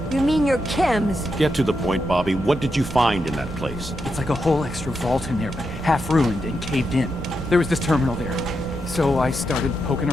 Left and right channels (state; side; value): normal; both; correlation 0.84